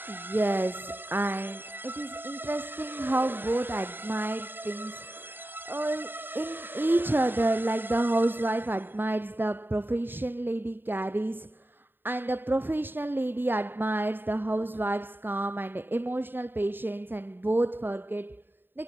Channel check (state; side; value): late; left; 0.097 ms